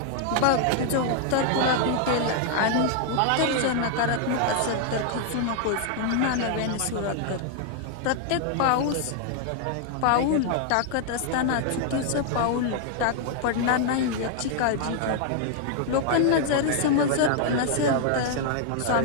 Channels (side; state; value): both; different; correlation 0.00